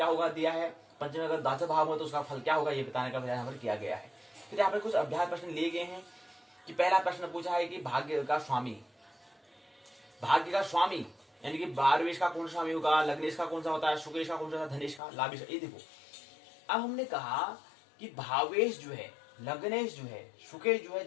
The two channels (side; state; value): right; drops out; at 15.0 s